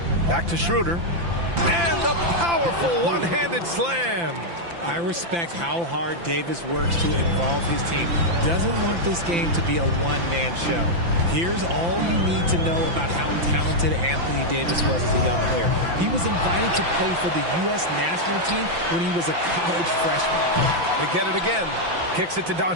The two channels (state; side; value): late; left; 5.9 ms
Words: Back to Schroeder. And the powerful one-handed slam. I respect how hard Davis works to involve his team. Doesn't want this game to be a one-man show. Here's all you need to know about how talented Anthony Davis was as a young player. He was invited to play for the U.S. national team when he was a college freshman. They get it again. Kicks it to